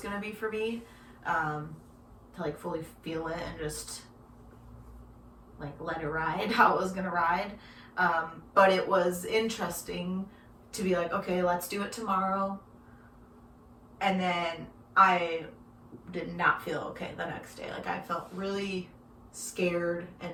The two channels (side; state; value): both; identical; correlation 1.00